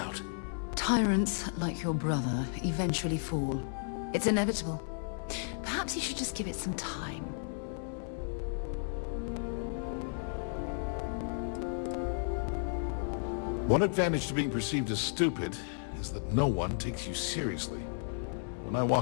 Tyrants, like your brother, eventually fall. It's inevitable. Perhaps you should just give it some time. One advantage to being perceived as stupid is that no one takes you seriously. When I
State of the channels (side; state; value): right; silent; digital silence